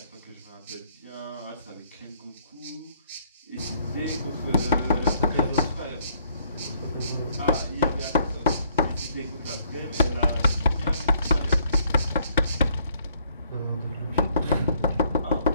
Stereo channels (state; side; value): inverted; both; correlation -0.66